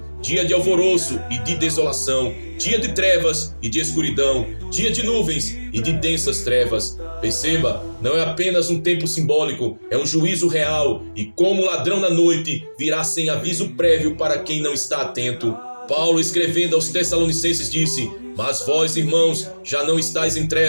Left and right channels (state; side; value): inverted; both; correlation -1.00